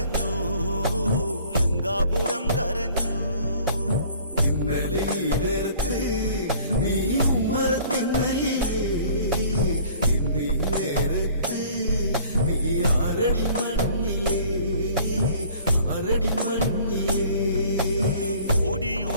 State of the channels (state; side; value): inverted; both; correlation -0.52